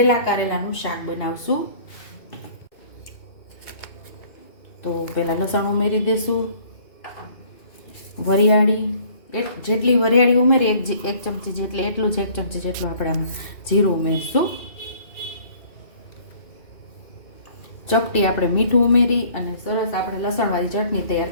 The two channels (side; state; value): right; late; 2.5 ms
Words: કારેલાનું શાક બનાવશું. તો પહેલાં લસણ ઉમેરી દેશું, વરિયાળી જેટલી વરિયાળી ઉમેરી 1 ચમચી જેટલી, એટલું જ 1 ચમચી જેટલું આપણે આમાં જીરું ઉમેરશું. ચપટી આપણે મીઠું ઉમેરી અને સરસ આપણે લસણવાળી ચટણી તૈયાર